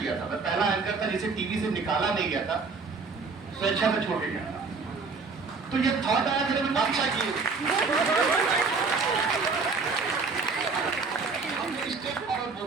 था, मैं पहला एंकर था जिसे टीवी से निकाला नहीं गया था, स्वेच्छा से छोड़ के गया था। तो ये थॉट आया कि मैं काम चाहिए, हम स्टेप फॉरवर्ड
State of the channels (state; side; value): quieter; left; 4.5 dB